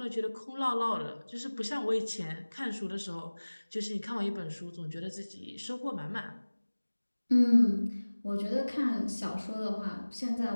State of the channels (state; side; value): inverted; both; correlation -1.00